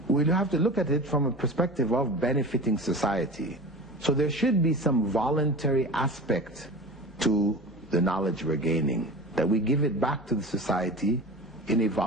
we'll have to look at it from a perspective of benefiting society. So there should be some voluntary aspect to the knowledge we're gaining, that we give it back to the society in a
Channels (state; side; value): normal; both; correlation 0.34